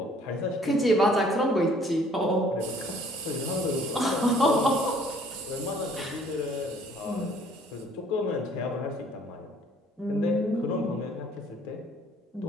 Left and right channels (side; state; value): both; normal; correlation 0.58